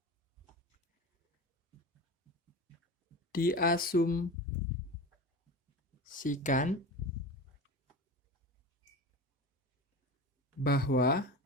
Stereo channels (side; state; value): both; normal; correlation 0.29